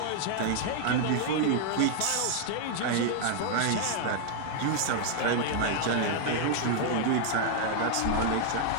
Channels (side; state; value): both; different; correlation 0.00